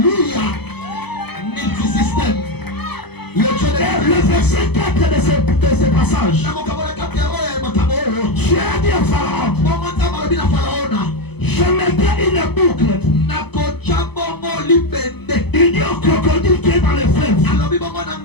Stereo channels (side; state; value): right; late; 0.98 ms